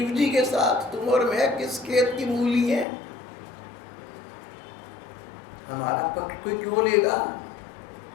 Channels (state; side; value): drops out; right; at 2.9 s